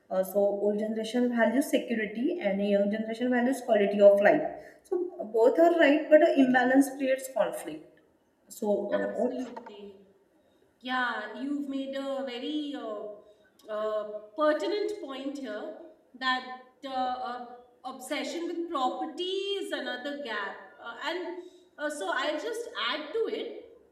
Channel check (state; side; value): identical; both; correlation 1.00